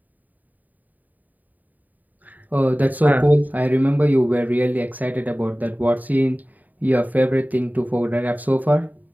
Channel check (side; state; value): left; late; 0.081 ms